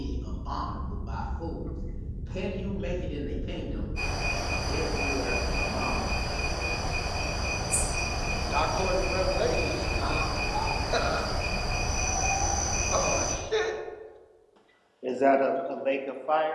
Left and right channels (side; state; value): both; identical; correlation 1.00